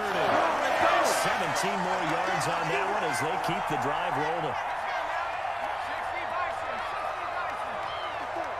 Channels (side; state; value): both; identical; correlation 1.00